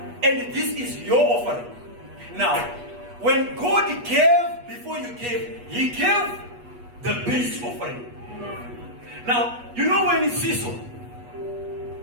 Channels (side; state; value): left; late; 8.3 ms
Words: And this is your offering. Now, when God gave, before you gave, He gave the base offering. Now, you know when it's seesaw,